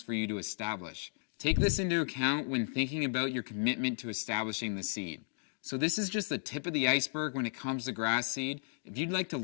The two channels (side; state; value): right; silent; digital silence